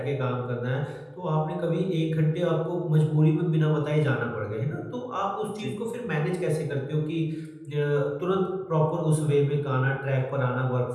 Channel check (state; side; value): identical; both; correlation 1.00